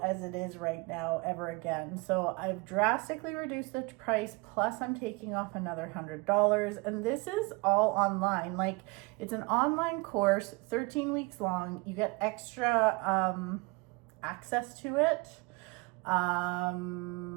as it is right now ever again. So I've drastically reduced the price, plus I'm taking off another $100. And this is all online. Like, it's an online course, 13 weeks long. You get extra access to it.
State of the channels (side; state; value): left; quieter; 26.8 dB